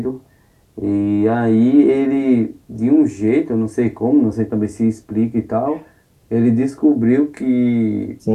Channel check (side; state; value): both; identical; correlation 1.00